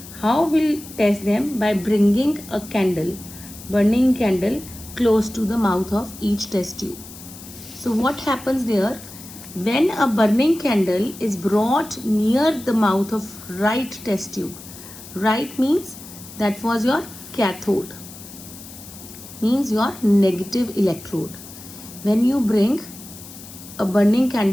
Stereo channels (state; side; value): noise; left; hiss, 16 dB below the sound